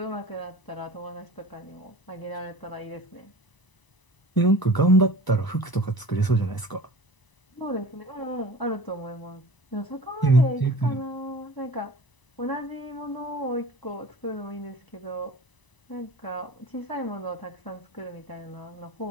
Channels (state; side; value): late; right; 1.0 ms